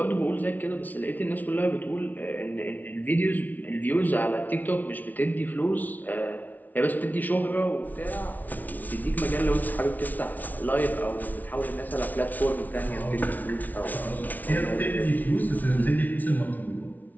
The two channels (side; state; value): right; late; 0.078 ms